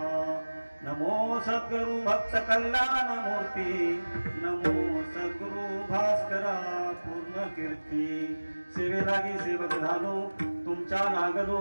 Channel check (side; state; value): both; inverted; correlation -1.00